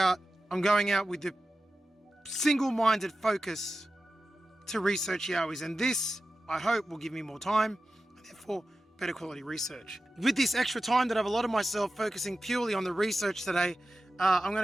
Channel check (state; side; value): normal; both; correlation 0.93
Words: I'm going out with the single-minded focus to research YOWIEs, and this, I hope, will give me more time, and therefore better quality research. With this extra time that I've allotted myself focusing purely on the research today, I'm going